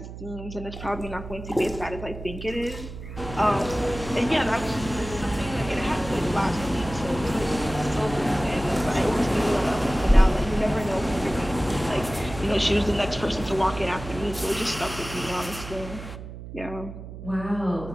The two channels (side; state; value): right; noise; hum, 12 dB below the sound